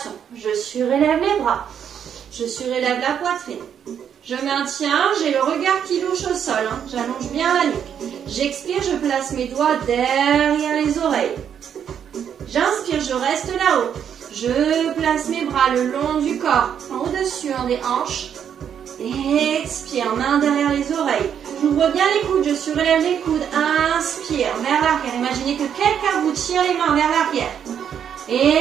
je surélève les bras. Je surélève la poitrine. Je maintiens, j'ai le regard qui louche au sol. Hein. J'allonge bien la nuque. J'expire, je place mes doigts derrière les oreilles. J'inspire, je reste là-haut. Je place mes bras le long du corps, au-dessus des hanches. Expire, main derrière les oreilles. J'ouvre bien les coudes, je surélève les coudes. Inspire, vers l'arrière. Imaginez que quelqu'un vous tire les mains vers l'arrière.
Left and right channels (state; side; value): quieter; left; 8.5 dB